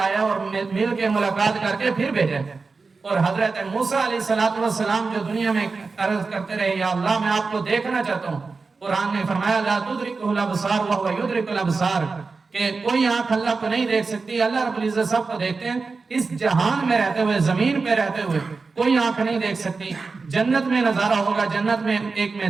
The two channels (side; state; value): left; quieter; 4.3 dB